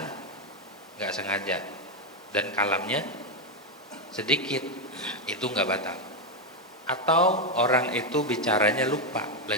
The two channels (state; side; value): normal; both; correlation 0.05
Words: nggak sengaja dan kalamnya sedikit, itu nggak batal. Atau orang itu bicaranya lupa